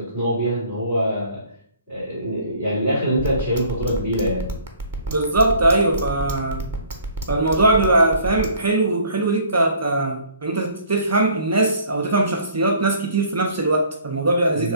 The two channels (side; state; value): both; inverted; correlation -0.55